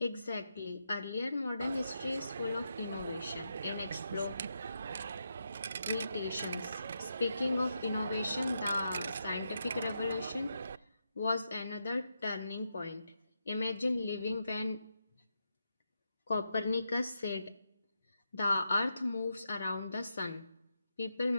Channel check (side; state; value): both; inverted; correlation -0.84